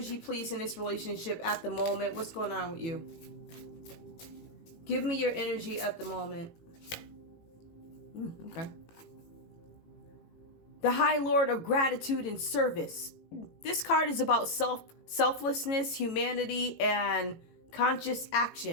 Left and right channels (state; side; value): late; right; 18 ms